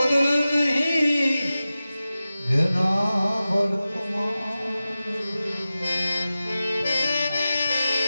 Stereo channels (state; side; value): inverted; both; correlation -0.94